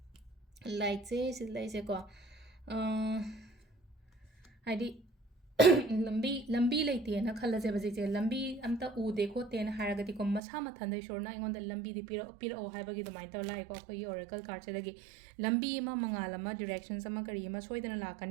ꯂꯥꯏꯠꯁꯦ ꯁꯤ ꯂꯩꯁꯦꯀꯣ ꯍꯥꯏꯗꯤ ꯂꯝꯕꯤ ꯂꯩꯇꯦꯅ ꯈꯜꯂꯁꯦꯕ ꯍꯧꯖꯤꯛꯁꯦ ꯂꯝꯕꯤ ꯑꯝꯇ ꯎꯗꯦ ꯈꯣꯠꯇꯦꯅ ꯍꯥꯏꯔꯒꯗꯤꯀꯣ ꯃꯁꯥ ꯃꯊꯟꯗ ꯏꯁꯣꯔꯅ ꯑꯩꯉꯣꯟꯗ ꯂꯝꯕꯤꯗꯤ ꯄꯤꯔꯛꯑꯣ ꯍꯥꯏꯕꯒꯤ ꯑꯗꯨꯃꯥꯏꯅ ꯇꯧꯔ ꯂꯥꯛꯏꯀꯣ ꯑꯩꯈꯣꯏꯒꯤ ꯑꯣꯔꯦꯀꯜ ꯀꯥꯔꯠꯁꯤꯗꯒꯤ ꯂꯝꯕꯤ ꯑꯃ ꯃꯉꯥꯜ ꯑꯃ ꯗꯤꯔꯦꯛꯁꯟꯁ ꯑꯃ ꯀꯔꯤ ꯑꯃ ꯁꯣꯏꯗꯅ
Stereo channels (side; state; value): left; drops out; at 10.4 s